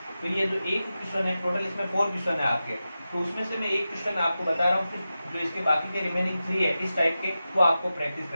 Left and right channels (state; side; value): inverted; both; correlation -0.93